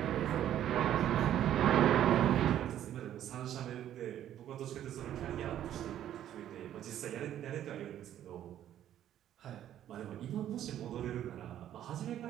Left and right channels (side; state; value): left; quieter; 11.3 dB